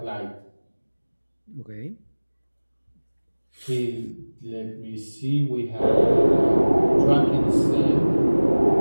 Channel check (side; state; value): both; inverted; correlation -1.00